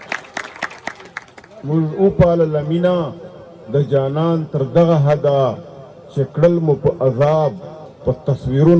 موږ وپالله مینه د جانان تر دغه حده چې کړل مو په عذاب په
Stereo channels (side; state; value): both; identical; correlation 1.00